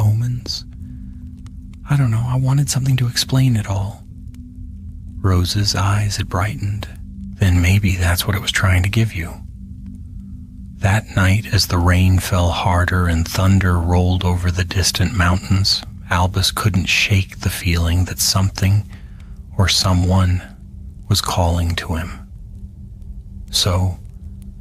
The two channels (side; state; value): both; identical; correlation 1.00